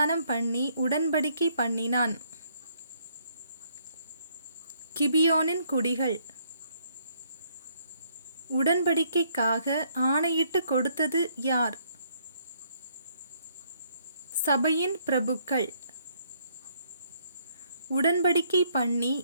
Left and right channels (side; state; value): both; inverted; correlation -0.68